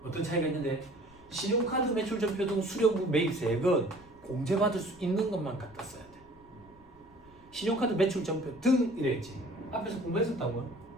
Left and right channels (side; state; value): left; noise; rumble, 26 dB below the sound